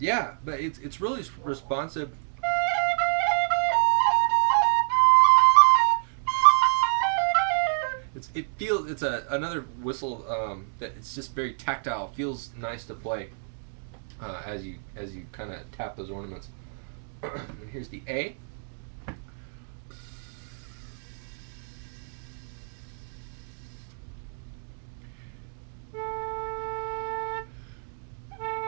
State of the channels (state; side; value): silent; left; digital silence